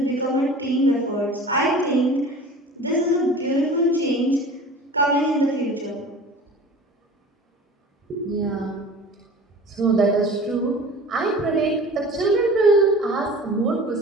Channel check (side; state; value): both; normal; correlation 0.40